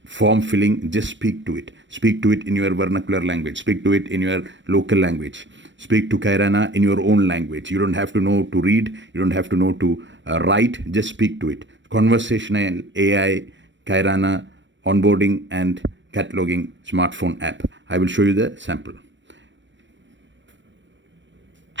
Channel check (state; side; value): late; left; 0.54 ms